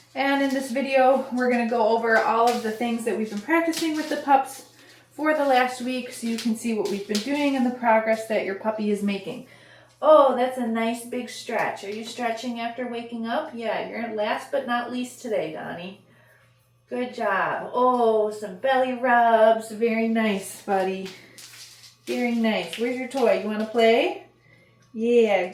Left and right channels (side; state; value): both; identical; correlation 1.00